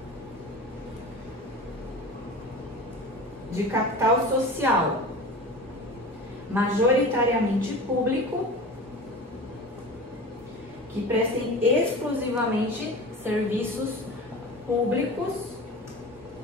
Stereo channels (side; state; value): both; normal; correlation 0.34